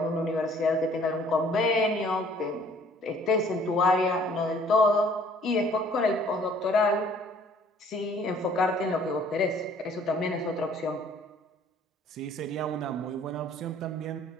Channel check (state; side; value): normal; both; correlation 0.57